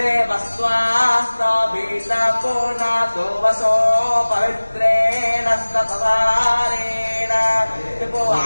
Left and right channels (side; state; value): both; inverted; correlation -1.00